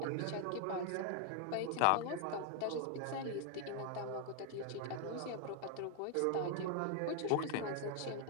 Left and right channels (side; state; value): both; different; correlation 0.00